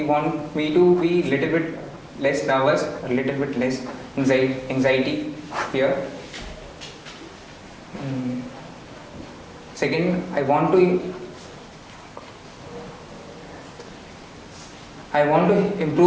want me to be little bit less nervous, a little bit less anxiety here. Second, I want to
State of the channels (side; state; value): both; identical; correlation 1.00